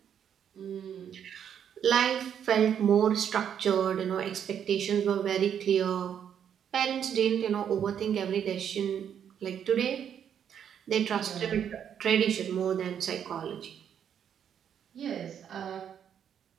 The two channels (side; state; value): left; quieter; 8.7 dB